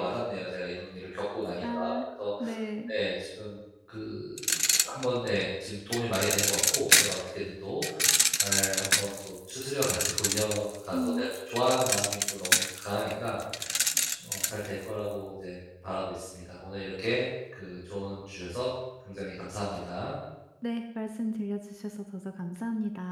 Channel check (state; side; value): identical; both; correlation 1.00